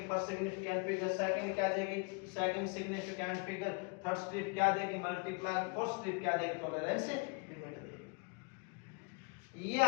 फर्स्ट सिग्निफिकेंट फिगर, सेकंड क्या देगी, second significant figure, third strip क्या देगी, मल्टीप्लाई, फोर्थ स्ट्रिप क्या देगी, टॉलरेंस लिमिट देगी। ये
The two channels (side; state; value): right; quieter; 33.4 dB